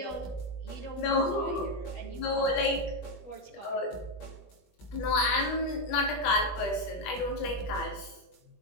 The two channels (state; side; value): late; right; 20 ms